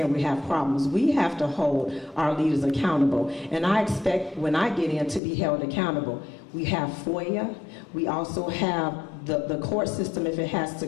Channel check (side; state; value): right; drops out; at 5.2 s